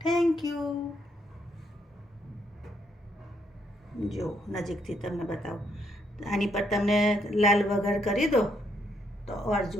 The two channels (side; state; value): both; normal; correlation 0.74